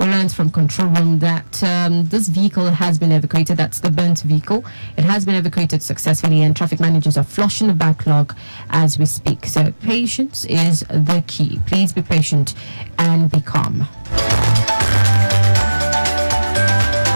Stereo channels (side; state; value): both; inverted; correlation -1.00